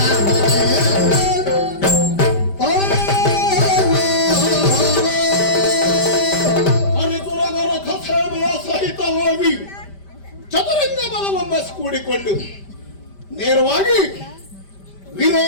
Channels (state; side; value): late; right; 5.1 ms